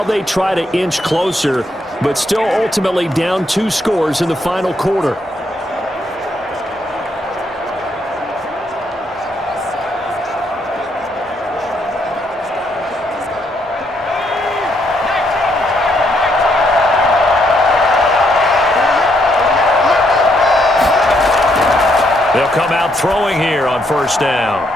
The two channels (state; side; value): normal; both; correlation 0.74